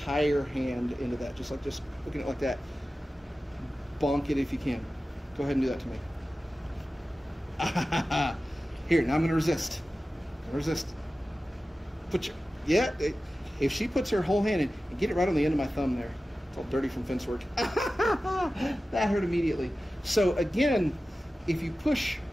hand into that, just looking at it like that. Bonk it if you can. Go ahead and do that to me. Here, now I'm going to resist. Resist. Put your, yeah, if she puts her whole hand in, and get it right on the end of my thumb there. It's all dirty from fence work. That hurt immediately. So again, if you push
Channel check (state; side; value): normal; both; correlation 0.95